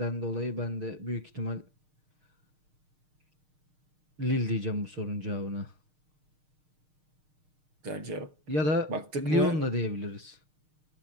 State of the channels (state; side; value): late; left; 6.5 ms